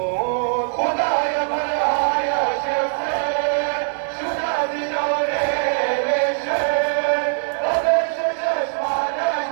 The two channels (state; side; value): silent; left; digital silence